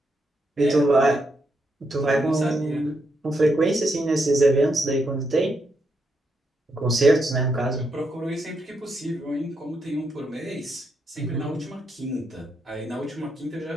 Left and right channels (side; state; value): both; normal; correlation 0.80